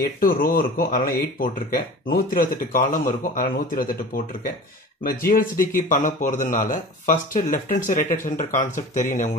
8 ரோ இருக்கும், அதனால 8 போட்டிருக்கேன். 128 காலம் இருக்கும், அதனால 128 போட்டிருக்கேன். நம்ம GLCDக்கு பண்ண போறதுனால first left hand side right hand side concept தெரியும்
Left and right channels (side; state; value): both; normal; correlation 0.38